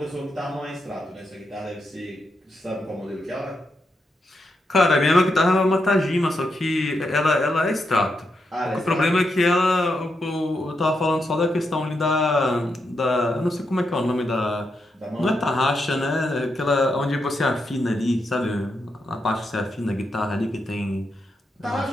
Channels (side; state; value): both; normal; correlation 0.83